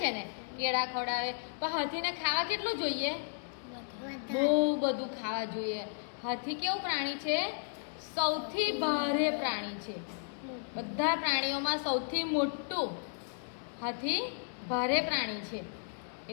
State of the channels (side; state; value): right; silent; digital silence